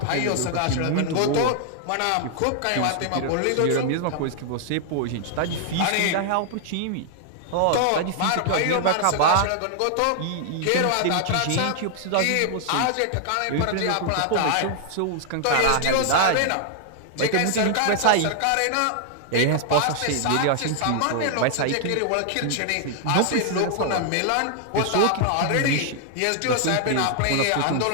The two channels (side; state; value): both; different; correlation 0.00